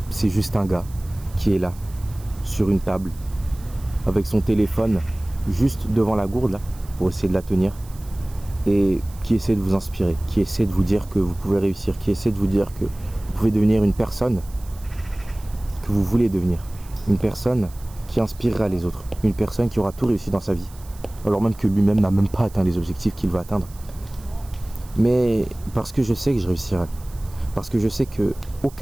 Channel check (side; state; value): right; noise; hiss, 23 dB below the sound